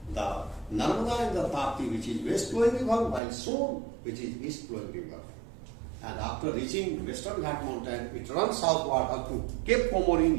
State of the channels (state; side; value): drops out; left; at 3.2 s